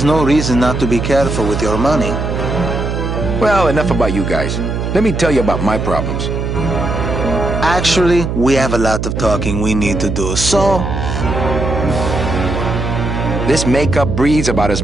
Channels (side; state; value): right; noise; hum, 3 dB below the sound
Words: no reason not to be careful with your money. Well, enough about you guys. Let me tell you about my problems. Actually, we have a lot of talking we need to do, so... This makeup breathes about as